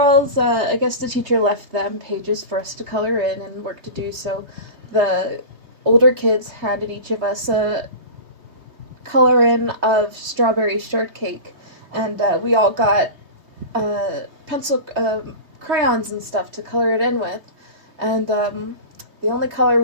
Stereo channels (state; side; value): late; left; 3.2 ms